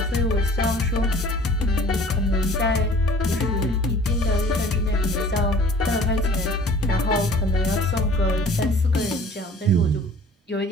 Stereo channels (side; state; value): both; normal; correlation 0.48